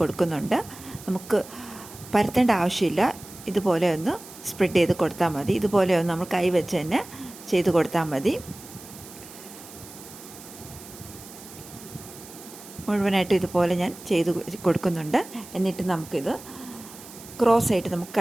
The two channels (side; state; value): right; noise; hiss, 17 dB below the sound